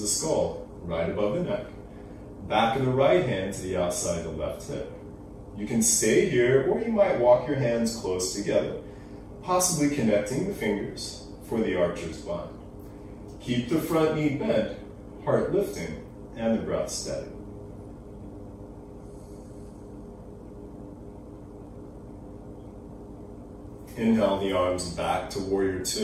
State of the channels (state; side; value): identical; both; correlation 1.00